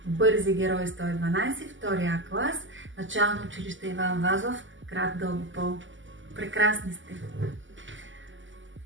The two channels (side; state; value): left; late; 0.55 ms